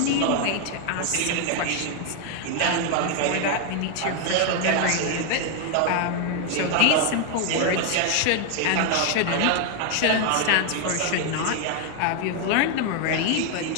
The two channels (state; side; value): different; both; correlation 0.00